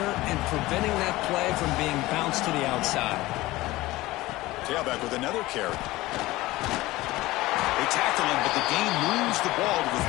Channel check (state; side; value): quieter; right; 18.6 dB